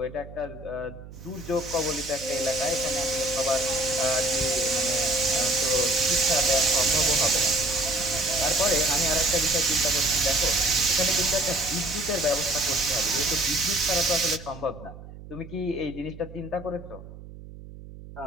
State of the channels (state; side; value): noise; right; hum, 16 dB below the sound